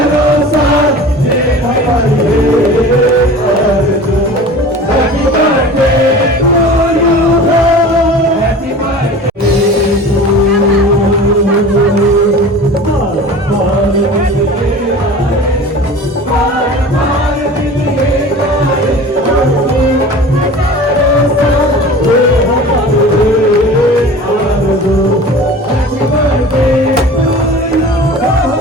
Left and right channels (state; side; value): normal; both; correlation 0.39